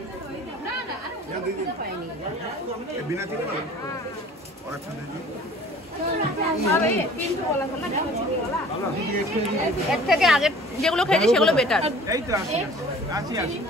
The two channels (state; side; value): normal; both; correlation 0.48